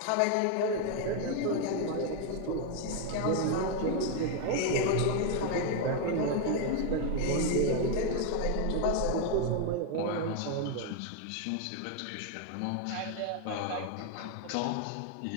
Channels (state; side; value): different; both; correlation 0.01